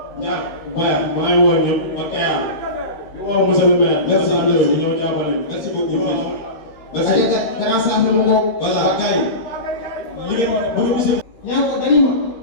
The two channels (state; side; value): late; right; 13 ms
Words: ñaar baya maa ngi woo ñëpp ba Kayar di woo monsieur le maire merci André ñu ñëw jàppale merci beaucoup merci. aja grand saaf mu ngoog. voilà gars yi li ngeen bëgg monsieur. ñaa ko dañu ma